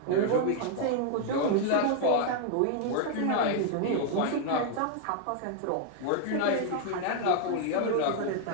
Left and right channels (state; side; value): different; both; correlation 0.00